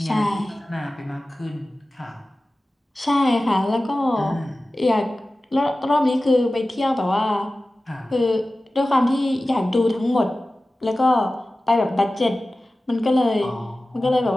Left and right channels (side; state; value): both; normal; correlation 0.96